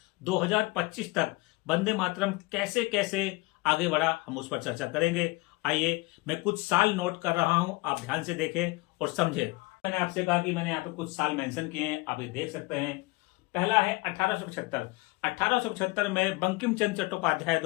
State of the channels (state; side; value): quieter; right; 23.4 dB